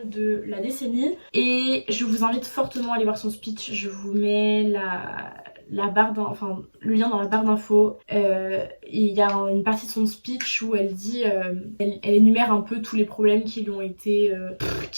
de la décennie et je vous invite fortement à aller voir son speech. Je vous mets la barre le lien dans la barre d'infos. Il y a une partie de son speech où elle dit, elle énumère un peu tous les problèmes qui lui ont été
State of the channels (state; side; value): inverted; both; correlation -1.00